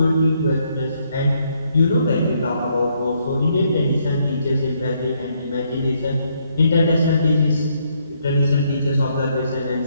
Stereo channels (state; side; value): inverted; both; correlation -0.73